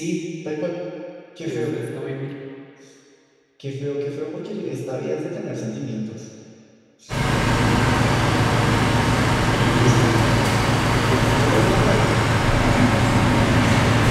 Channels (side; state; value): both; identical; correlation 1.00